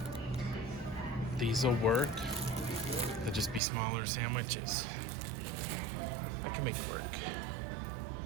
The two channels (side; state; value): left; drops out; at 3.6 s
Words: These'll work. They'll just be smaller sandwiches. I can make it work.